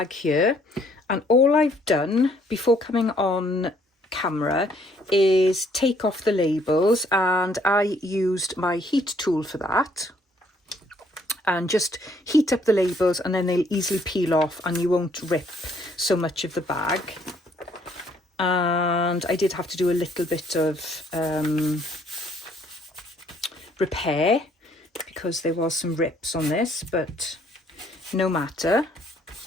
here, and all I've done before coming on camera is take off the labels, and I used my heat tool for that, and just heat up the labels, and then they'll easily peel off and you won't rip so much of the bag. And I did have to do a little bit of repair because there was some rips on this, but no matter.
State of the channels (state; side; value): normal; both; correlation 0.65